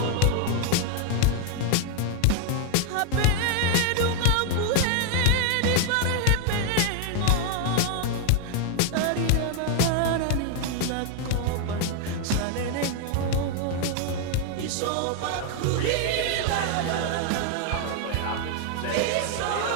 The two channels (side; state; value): both; different; correlation 0.00